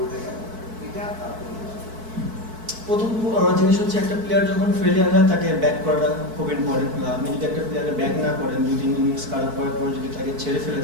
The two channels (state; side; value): late; left; 4.6 ms